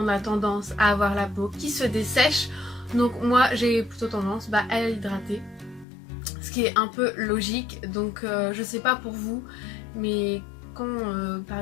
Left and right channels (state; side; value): drops out; right; at 5.9 s